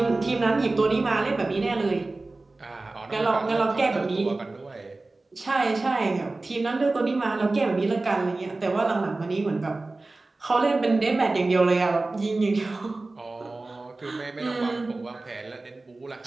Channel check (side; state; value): left; quieter; 3.2 dB